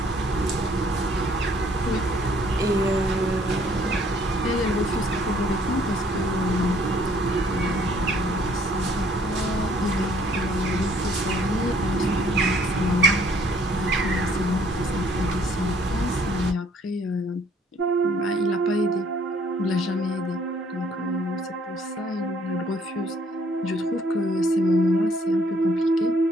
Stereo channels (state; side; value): normal; both; correlation 0.62